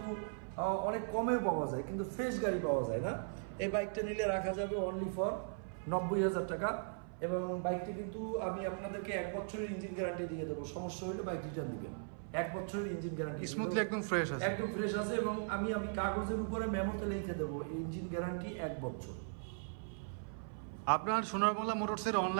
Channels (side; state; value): left; silent; 52 dB below the other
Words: অনেক কমে পাওয়া যায়, কিন্তু ফ্রেশ গাড়ি পাওয়া যায় না। এই বাইকটা নিলে রাখা যাবে অনলি ফর 90,000 টাকা, এবং বাইকটি কিন্তু আমি আপনাদেরকে 1 বছরের ইঞ্জিন গ্যারান্টি দিয়ে দেবো। সমস্যা হলে বাইক রিটার্ন দিবেন। 1 বছরের ইঞ্জিন গ্যারান্টি, স্মুথলি একদম ফ্রেশ আছে, একদম ফ্রেশ আছে। এবং আমি কাগজের উপরে মেমোতে লিখে দেবো ইঞ্জিন গ্যারান্টি 1 বছর। আপনার সোনার বাংলা মোটরসের